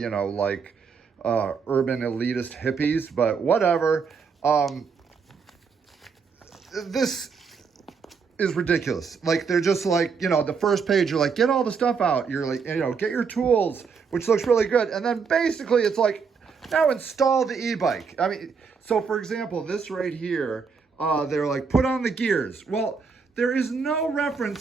know, like urban elitist hippies, but whatever. This is ridiculous. Like, they're just like, you know, the first page, you're like, get all the stuff out. You're like, you know, get your tools, which looks really good. And then basically it's like, now install the e-bike. I mean, so for example, this right here, they're like, put on the gears. Well, there is no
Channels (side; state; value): left; quieter; 5.6 dB